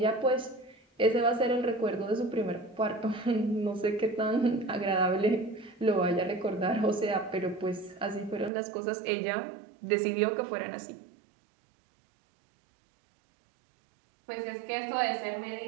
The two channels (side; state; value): left; drops out; at 8.5 s